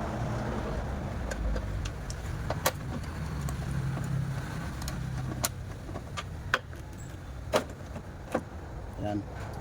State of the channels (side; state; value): both; identical; correlation 1.00